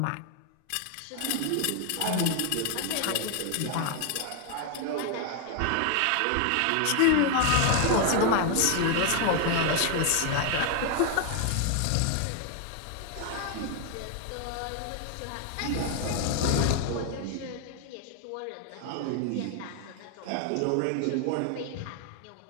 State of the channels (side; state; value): both; different; correlation 0.00